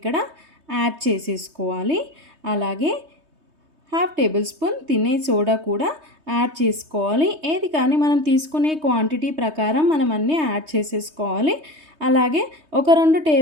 యాడ్ చేసేసుకోవాలి. అలాగే 1/2 టేబుల్ స్పూన్ తినే సోడా కూడా యాడ్ చేసుకోవాలి. ఏది కానీ మనం తీసుకునే క్వాంటిటీ ప్రకారం మనం అన్నీ యాడ్ చేసేసుకోవాలి. అలాగే ఒక 2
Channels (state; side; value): late; left; 3.2 ms